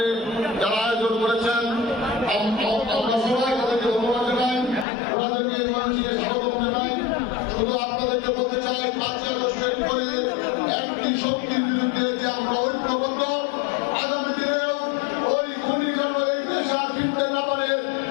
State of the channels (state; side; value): drops out; right; at 4.9 s